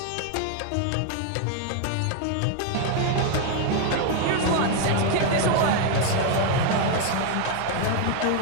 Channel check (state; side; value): different; both; correlation 0.01